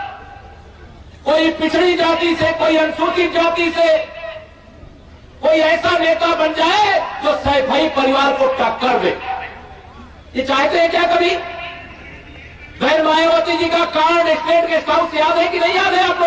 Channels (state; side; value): identical; both; correlation 1.00